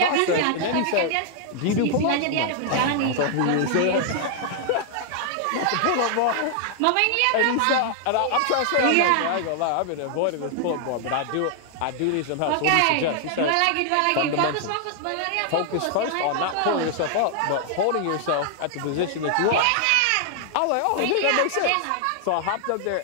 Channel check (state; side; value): different; both; correlation 0.00